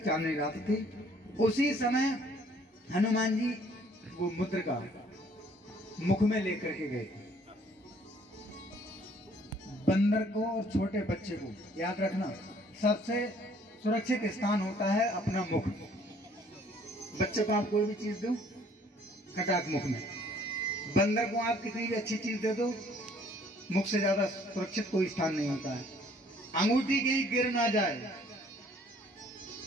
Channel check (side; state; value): both; normal; correlation 0.59